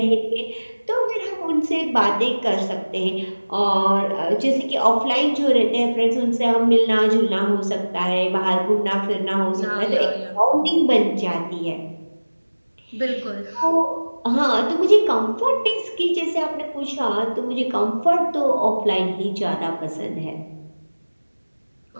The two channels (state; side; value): inverted; both; correlation -1.00